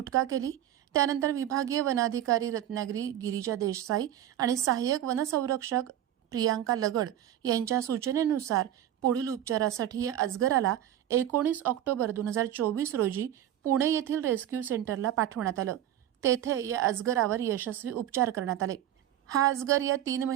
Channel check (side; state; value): left; quieter; 11.7 dB